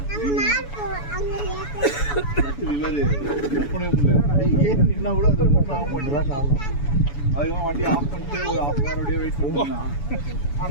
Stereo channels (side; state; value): right; late; 7.0 ms